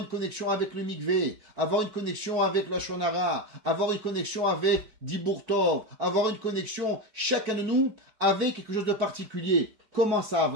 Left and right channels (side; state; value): left; late; 4.6 ms